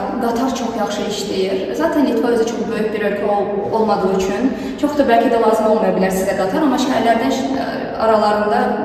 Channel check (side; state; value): both; identical; correlation 1.00